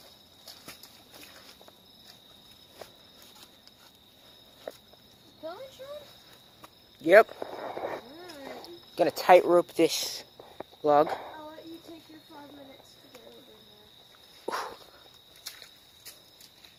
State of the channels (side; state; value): both; identical; correlation 1.00